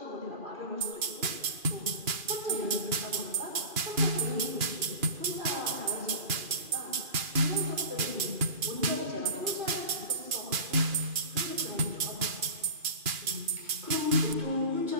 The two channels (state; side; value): late; left; 2.4 ms